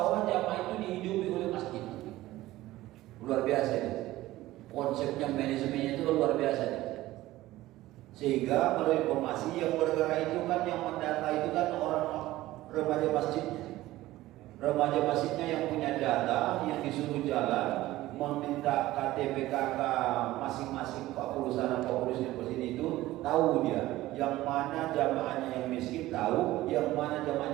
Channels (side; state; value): left; quieter; 16.6 dB